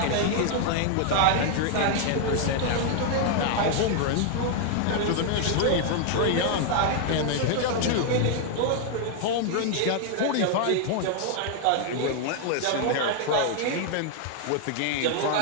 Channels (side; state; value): both; different; correlation 0.00